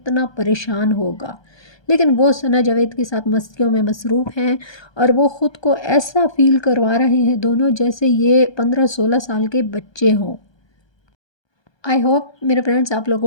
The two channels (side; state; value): right; late; 1.2 ms